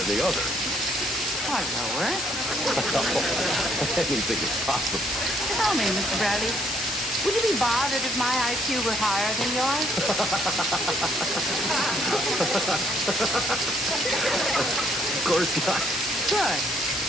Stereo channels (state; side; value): noise; left; hiss, 4 dB below the sound